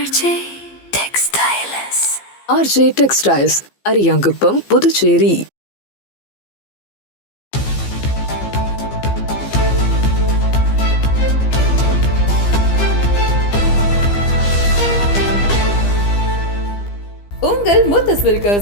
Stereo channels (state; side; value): late; right; 15 ms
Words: textiles. RJ textiles, Ariyankuppam, Puducherry. உங்கள் முத்து